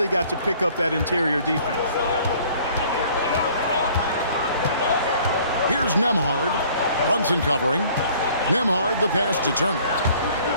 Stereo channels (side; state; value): both; inverted; correlation -0.55